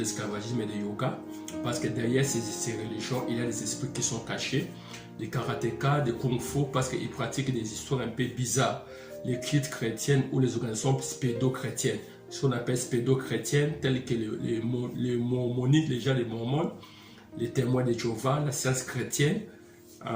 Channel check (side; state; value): both; identical; correlation 1.00